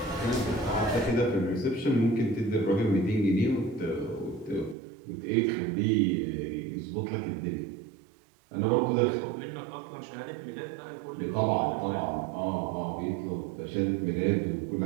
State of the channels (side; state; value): left; drops out; at 4.8 s